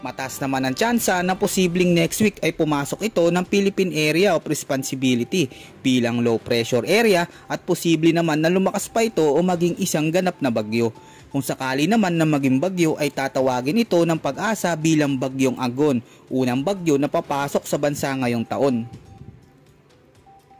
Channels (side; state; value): both; identical; correlation 1.00